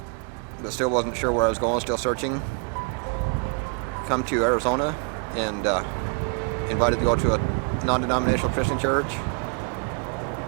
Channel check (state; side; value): quieter; left; 38.4 dB